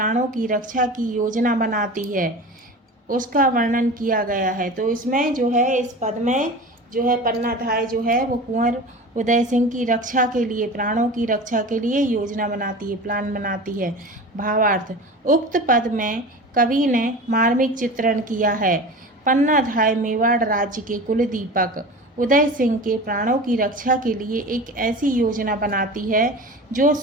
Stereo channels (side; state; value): both; normal; correlation 0.34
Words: की रक्षा की योजना बनाती है, उसका वर्णन किया गया है। तो इसमें जो है, इस पद में जो है पन्नाधाय जो है वो कुंवर उदय सिंह की रक्षा के लिए, प्राणों की रक्षा के लिए योजना बनाती है, प्लान बनाती है। भावार्थ, उक्त पद में कवि ने मार्मिक चित्रण किया है। पन्नाधाय मेवाड़ राज्य के कुलदीपक उदय सिंह के प्राणों की रक्षा के लिए एक ऐसी योजना बनाती है जो